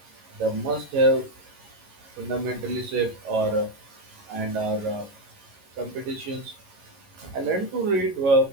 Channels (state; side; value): late; left; 11 ms